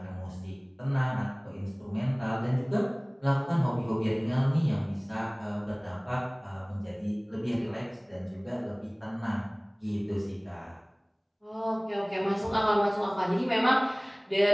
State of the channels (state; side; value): identical; both; correlation 1.00